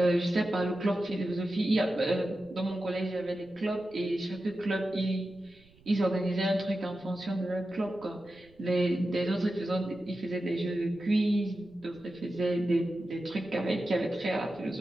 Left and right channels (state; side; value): noise; right; rumble, 28 dB below the sound